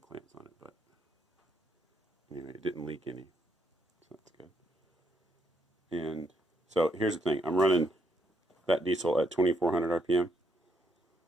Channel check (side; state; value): both; normal; correlation 0.75